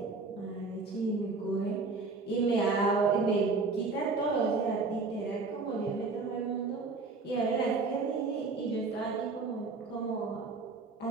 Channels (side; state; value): left; quieter; 4.1 dB